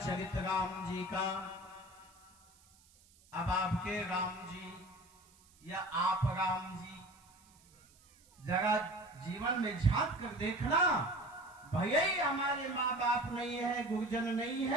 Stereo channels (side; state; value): right; noise; hiss, 28 dB below the sound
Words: राम जी का। अब आपके राम जी या आप राम जी जरा जीवन में झांक कर देखना। भले ही हमारे माँ बाप नहीं है, गुरुजन नहीं